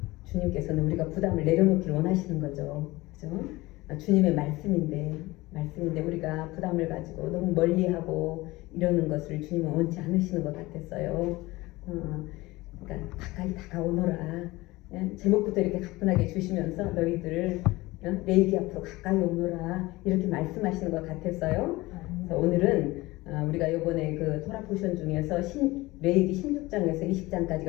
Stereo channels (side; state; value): right; quieter; 20.3 dB